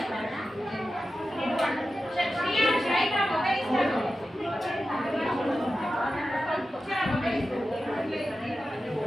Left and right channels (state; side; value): normal; both; correlation 0.92